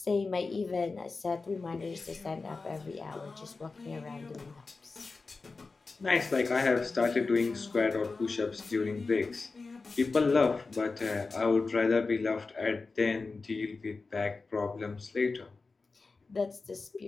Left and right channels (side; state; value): right; quieter; 4.0 dB